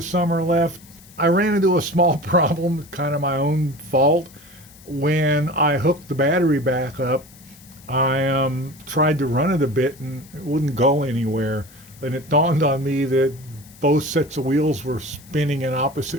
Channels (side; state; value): left; noise; hiss, 23 dB below the sound